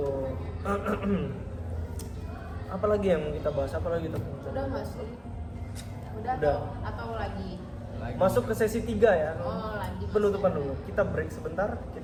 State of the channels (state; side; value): identical; both; correlation 1.00